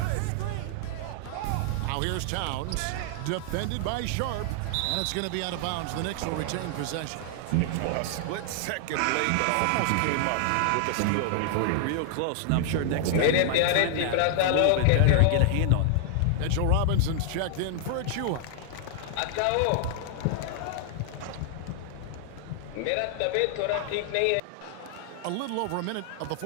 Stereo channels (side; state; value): both; different; correlation 0.00